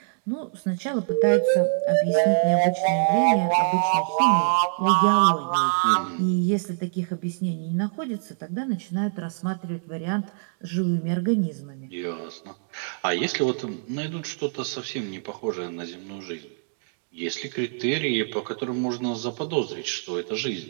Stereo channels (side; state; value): left; silent; digital silence